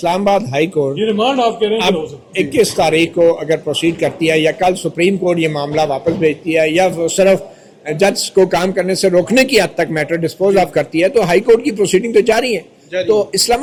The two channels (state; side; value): identical; both; correlation 1.00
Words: آباد ہائی کورٹ یہ ریمانڈ آپ کہہ رہے ہیں اب 21 تاریخ کو اگر پروسیڈ کرتی ہے یا کل سپریم کورٹ یہ معاملہ واپس بھیجتی ہے یا صرف جج کو کام کرنے سے روکنے کی حد تک میٹر ڈسپوز آف کرتی ہے تو ہائی کورٹ کی پروسیڈنگ تو جاری ہے. تو